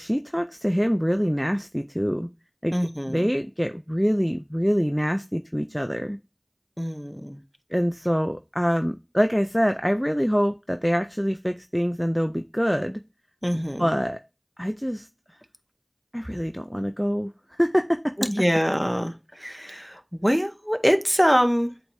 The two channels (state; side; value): identical; both; correlation 1.00